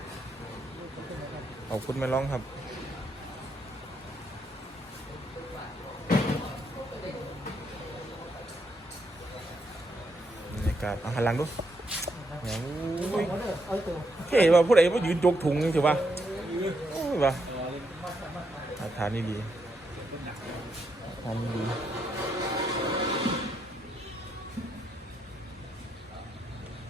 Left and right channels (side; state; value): both; normal; correlation 0.78